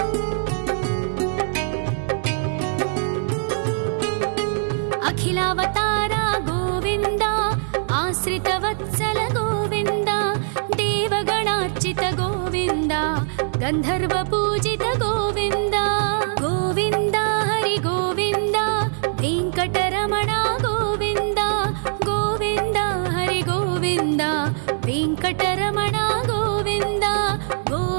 ಅಖಿಲಾವತಾರ ಗೋವಿಂದ ಆಶ್ರಿತವತ್ಸಲ ಗೋವಿಂದ ದೇವಗಣಾರ್ಚಿತ ಗೋವಿಂದ ಗಂಧರ್ವ ಪೂಜಿತ ಗೋವಿಂದ ಗೋವಿಂದ ಹರಿ ಗೋವಿಂದ ವೆಂಕಟರಮಣ ಗೋವಿಂದ ಗೋವಿಂದ ಹರಿ ಗೋವಿಂದ ವೆಂಕಟರಮಣ ಗೋವಿಂದ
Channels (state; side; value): silent; left; digital silence